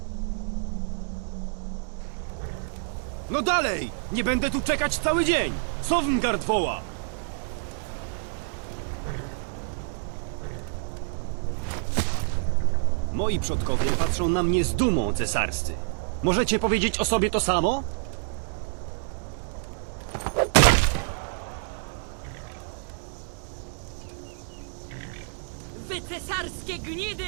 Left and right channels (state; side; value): silent; left; digital silence